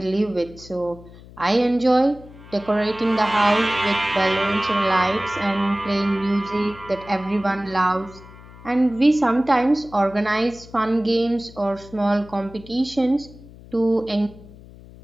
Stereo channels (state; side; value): noise; left; hum, 20 dB below the sound